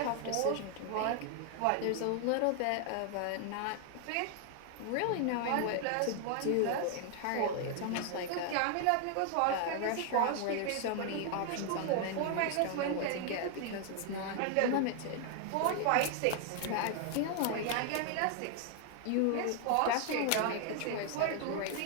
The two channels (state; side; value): different; both; correlation 0.00